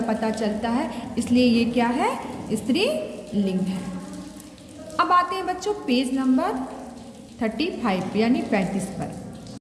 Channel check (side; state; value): both; identical; correlation 1.00